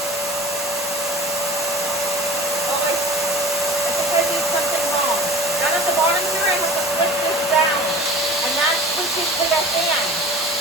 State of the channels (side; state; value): both; normal; correlation 0.39